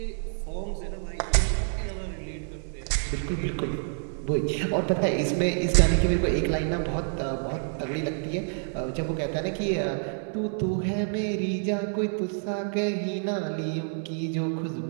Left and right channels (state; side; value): silent; left; 60 dB below the other